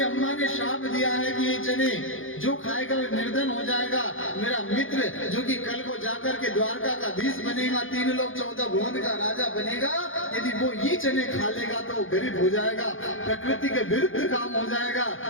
अम्मा ने श्राप दिया है कि ये चने जो खाएगा वो निर्धन हो जाएगा। मेरा मित्र जो कि कल को जाकर के द्वारका का धीश बनेगा, 3 लोक 14 भुवन का राजा बनेगा, यदि वो ये चने खा लेगा तो वो गरीब हो जाएगा, प्रकृति के विरुद्ध काम हो जाएगा।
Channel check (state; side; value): late; right; 0.58 ms